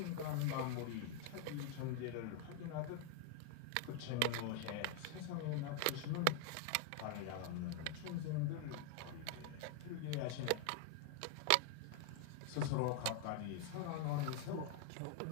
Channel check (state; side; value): different; both; correlation 0.00